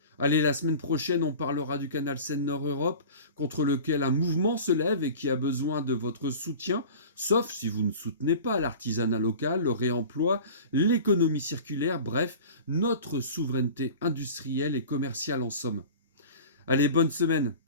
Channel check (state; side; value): inverted; both; correlation -0.37